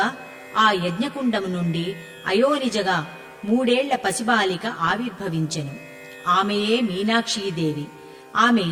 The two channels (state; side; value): identical; both; correlation 1.00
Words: ఆ యజ్ఞకుండము నుండి అయోనిజగా 3 ఏళ్ల పసిబాలిక ఆవిర్భవించెను. ఆమెయే మీనాక్షీదేవి. ఆమె